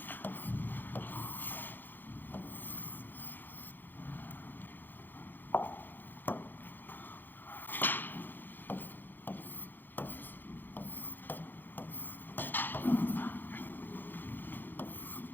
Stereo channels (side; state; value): right; late; 0.092 ms